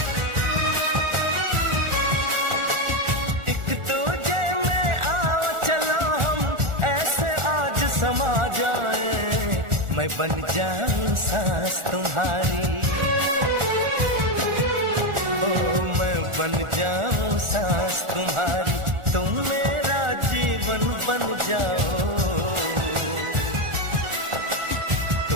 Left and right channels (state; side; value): late; left; 1.4 ms